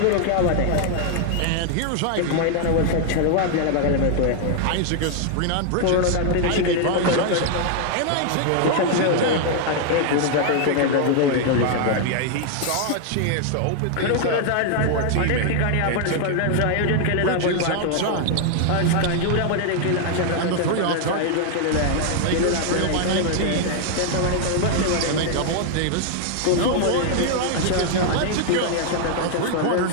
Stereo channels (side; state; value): both; different; correlation 0.00